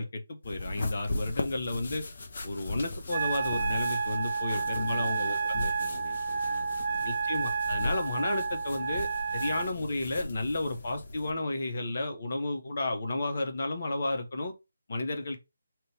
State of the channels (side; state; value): both; inverted; correlation -0.86